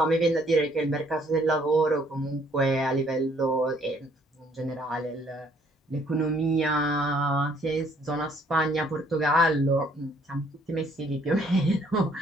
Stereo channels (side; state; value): both; normal; correlation 0.64